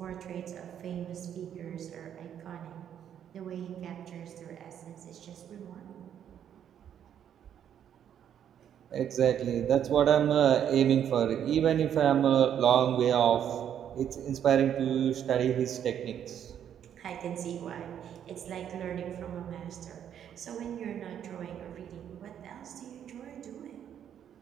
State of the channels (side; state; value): left; quieter; 9.4 dB